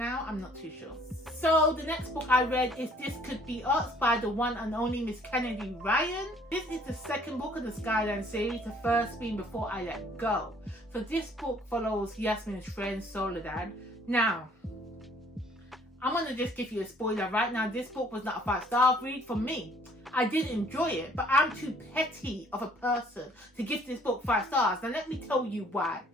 I'm not too sure. So the next book I read is This Could Be Us by the one and only Miss Kennedy Ryan. This is the second book of the Skyline series, the first being Before I Let Go. So this book follows Yasmin's friend Soledad. Now, I'm going to just give you a spoiler right now. This book was not a 5-star read for me. I did enjoy it, but I'm too petty of a person to give this book 5 stars. Now let me tell you why.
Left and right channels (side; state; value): both; normal; correlation 0.59